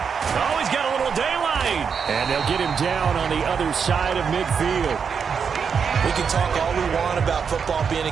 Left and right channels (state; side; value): quieter; left; 6.4 dB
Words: he's got a little daylight. And they'll get him down on the other side of midfield. We can talk all we want about football being